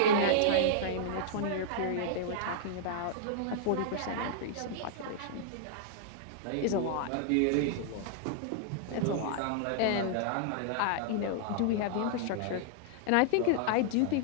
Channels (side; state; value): both; different; correlation -0.01